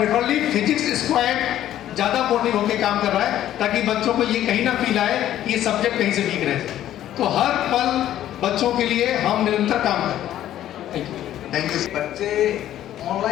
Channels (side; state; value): right; quieter; 12.3 dB